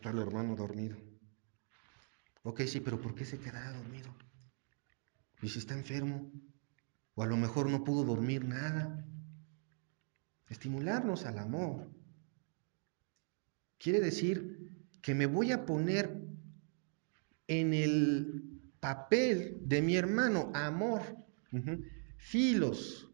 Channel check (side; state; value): left; silent; 51 dB below the other